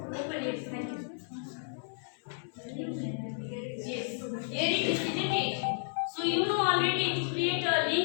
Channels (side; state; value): right; silent; digital silence